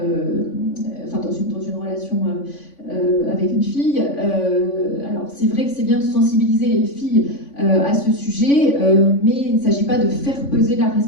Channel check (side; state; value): right; late; 3.5 ms